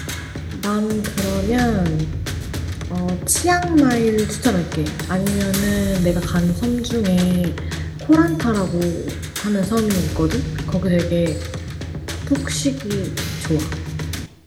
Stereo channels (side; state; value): both; identical; correlation 1.00